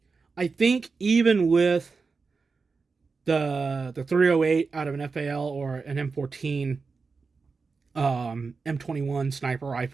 I think even with the 308 out of an FAL or an M14, M21 sniper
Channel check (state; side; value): quieter; left; 4.6 dB